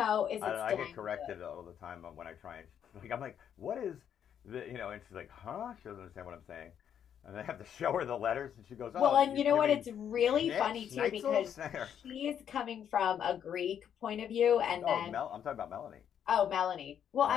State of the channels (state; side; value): quieter; right; 8.9 dB